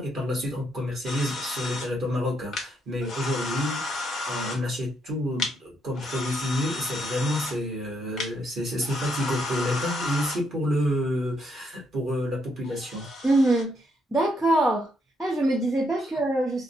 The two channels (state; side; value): normal; both; correlation 0.76